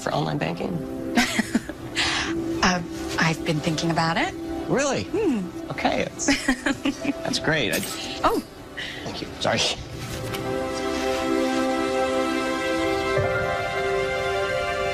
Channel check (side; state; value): both; identical; correlation 1.00